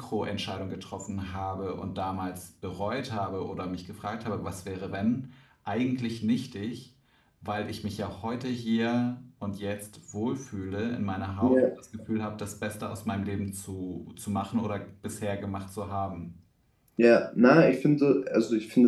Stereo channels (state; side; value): identical; both; correlation 1.00